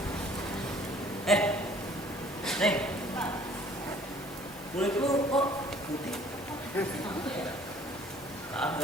Neng. Kulit lu kok putih?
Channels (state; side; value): normal; both; correlation 0.55